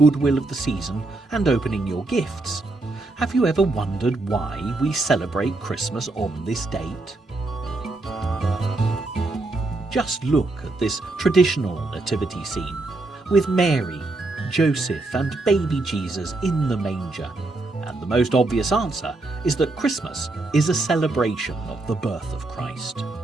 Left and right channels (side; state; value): left; quieter; 3.1 dB